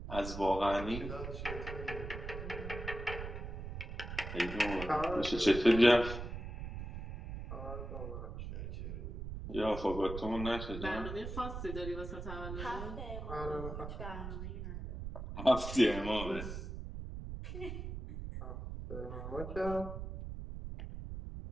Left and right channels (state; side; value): noise; right; rumble, 7 dB below the sound